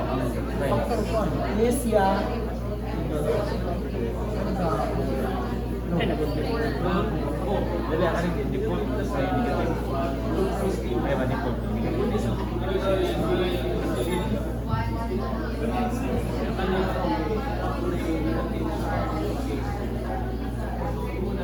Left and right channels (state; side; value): identical; both; correlation 1.00